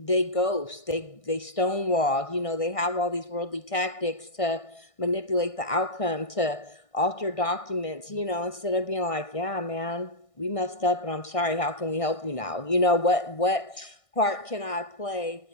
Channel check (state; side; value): late; right; 1.6 ms